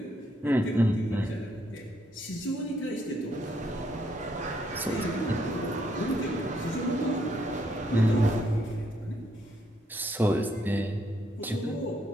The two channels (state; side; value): normal; both; correlation 0.73